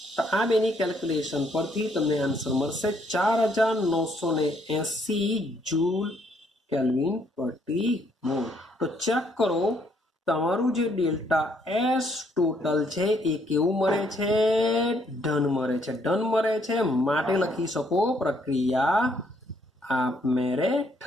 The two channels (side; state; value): both; normal; correlation 0.69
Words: તો આ બેની કેલ્ક્યુલેશન પરથી તમને આન્સર મળશે 4980 જૂલ કેલ્વિન પ્રતિ મોલ. તો ચેક કરો તમારું જે ડેલ્ટા એસ ટોટલ છે એ કેવું મળે છે? ધન મળે છે. ધન મળે છે માટે લખી શકો પ્રક્રિયા આપમેળે